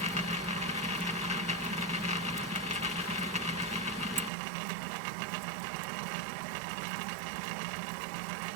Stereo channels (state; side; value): drops out; left; at 4.3 s